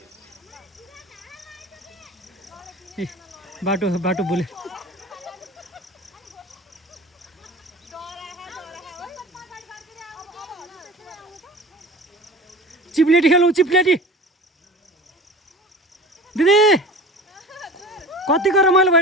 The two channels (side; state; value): both; normal; correlation 0.37